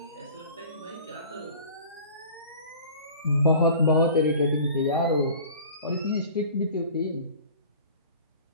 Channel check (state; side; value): inverted; both; correlation -0.44